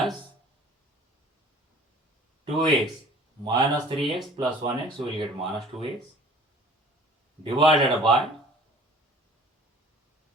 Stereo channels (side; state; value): both; normal; correlation 0.49